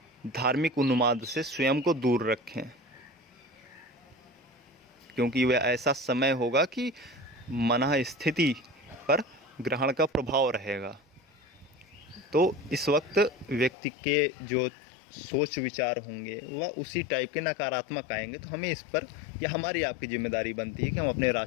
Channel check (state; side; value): drops out; right; at 13.7 s